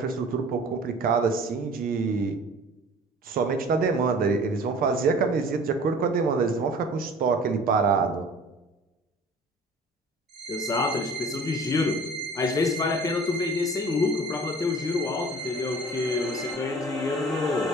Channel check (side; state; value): both; normal; correlation 0.46